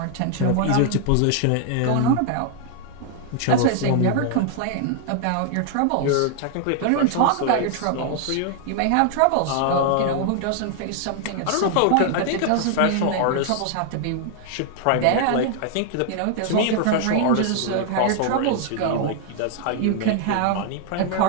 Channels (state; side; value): different; both; correlation 0.00